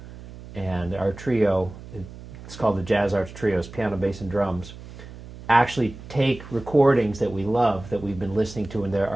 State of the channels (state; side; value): noise; right; hum, 15 dB below the sound